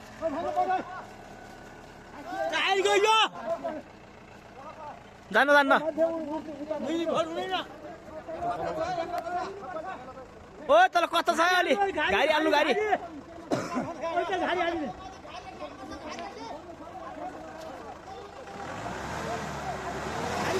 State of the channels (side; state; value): both; identical; correlation 1.00